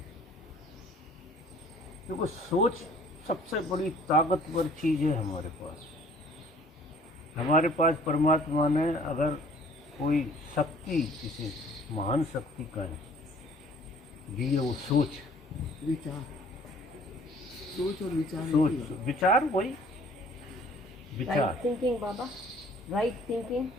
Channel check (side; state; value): both; normal; correlation 0.54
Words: क्योंकि सोच सबसे बड़ी ताकतवर चीज़ है हमारे पास। हमारे पास परमात्मा ने अगर कोई शक्ति, किसी महान शक्ति का है दी है, वो सोच, विचार, सोच और विचार। सोच, विचार, वही विचार, राइट थिंकिंग बाबा, right thinking,